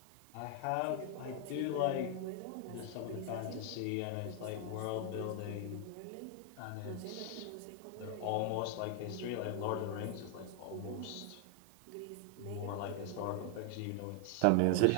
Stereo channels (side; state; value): both; different; correlation 0.00